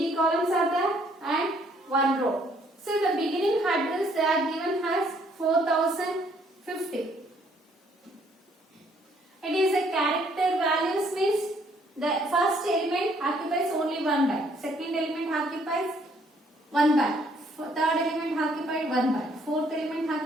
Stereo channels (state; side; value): normal; both; correlation 0.65